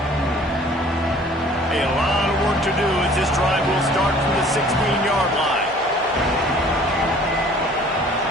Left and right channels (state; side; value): normal; both; correlation 0.52